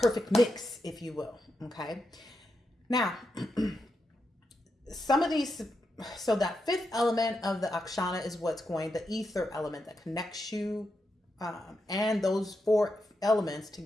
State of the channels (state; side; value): normal; both; correlation 0.85